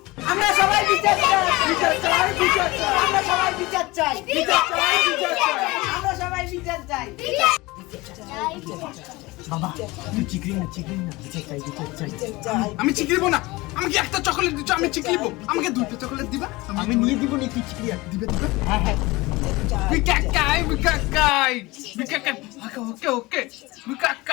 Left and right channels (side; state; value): right; quieter; 21.8 dB